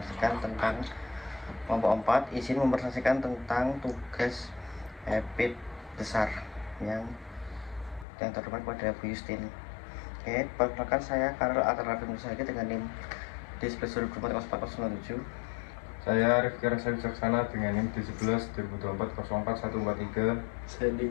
tentang kelompok 4 izin mempresentasikan tentang tugas EPIT besar yang terdepan pada Bu Justin. Oke, perkenalkan saya Karel Atarafim Nusagi dengan NIM D11 Saya Rifki Rasa Wicaksana dengan NIM D11 2024 04143. Saya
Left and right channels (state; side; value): drops out; right; at 8.1 s